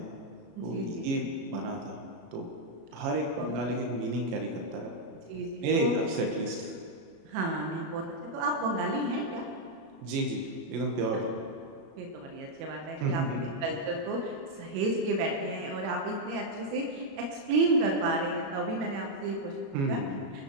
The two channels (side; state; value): left; late; 33 ms